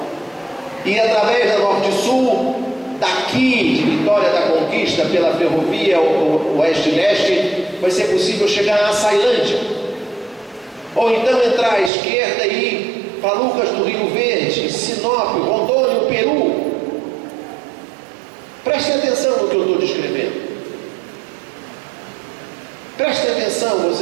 e através da Norte-Sul, daqui de Vitória da Conquista, pela ferrovia Oeste-Leste, vai ser possível chegar a Açailândia, ou então entrar à esquerda e ir para Lucas do Rio Verde, Sinop, Rondônia, Peru. Prestem atenção no que eu estou descrevendo. Prestem atenção,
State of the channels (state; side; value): drops out; left; at 11.9 s